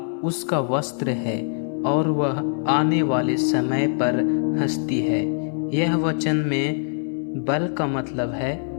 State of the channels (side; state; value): right; silent; 60 dB below the other